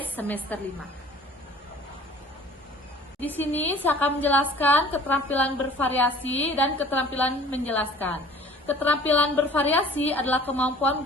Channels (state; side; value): normal; both; correlation 0.50